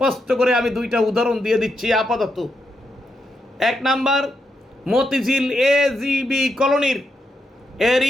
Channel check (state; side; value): normal; both; correlation 0.82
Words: করে আমি 2টা উদাহরণ দিয়ে দিচ্ছি আপাতত। 1 নাম্বার, মতিঝিল AGB কলোনির